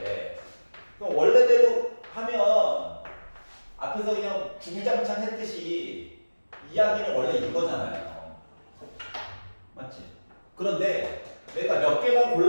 그럼 원래대로 하면 앞에서 그냥 주구장창 했듯이 이야기는 원래 이거잖아요. 맞지? 그런데 내가 몇 개만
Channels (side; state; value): both; inverted; correlation -1.00